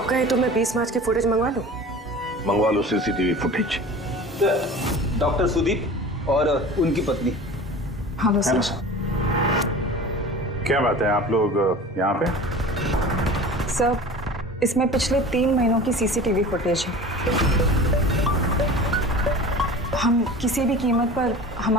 कहें तो मैं 20 मार्च की फुटेज मंगवा लूं? मंगवा लो सीसीटीवी फुटेज। डॉक्टर सुदीप और उनकी पत्नी। Hello sir. क्या बात है, आप लोग यहाँ पे? सर इसमें पिछले 3 महीनों की सीसीटीवी फुटेज है। हम किसी भी कीमत पर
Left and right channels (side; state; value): both; normal; correlation 0.38